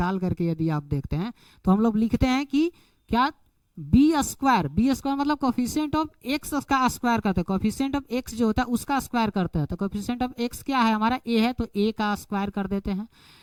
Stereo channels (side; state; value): both; identical; correlation 1.00